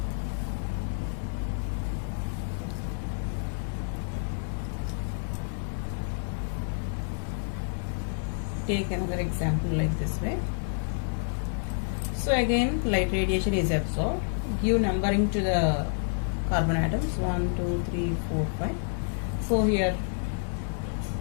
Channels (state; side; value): silent; right; 59 dB below the other